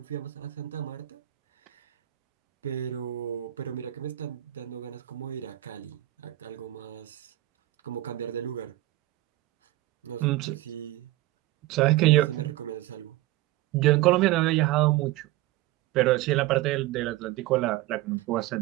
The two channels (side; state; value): left; quieter; 16.6 dB